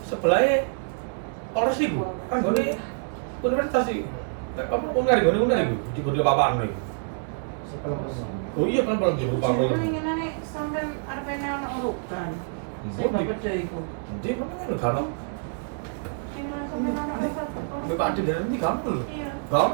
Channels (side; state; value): left; silent; digital silence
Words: sebelahnya Polres itu, kan gue universitas sih. Apa uner itu, di apa-apaan nih? Setelah Oh iya pelan-pelan di Jadi Pangkal. ngene sampean arepene ana urutan. Sing Budi. beda iku. Jadi mana kan kan? Sing sampean ana urutan. Bapak ada dari ini kamu loh. Iya.